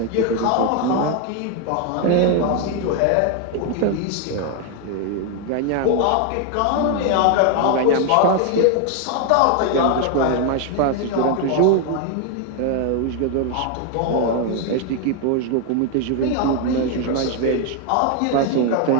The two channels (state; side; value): different; both; correlation 0.01